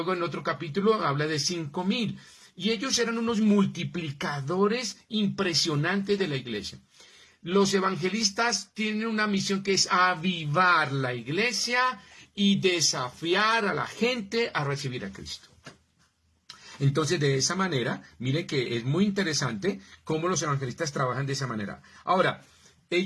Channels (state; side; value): identical; both; correlation 1.00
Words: en otro capítulo habla de 5,000. Y ellos eran unos multiplicadores impresionantes de la iglesia. Los evangelistas tienen una misión que es avivar la iglesia y desafiar a la gente a recibir a Cristo. Entonces, de esa manera, miren que es muy interesante cómo los evangelistas trabajan de esa manera. Ahora,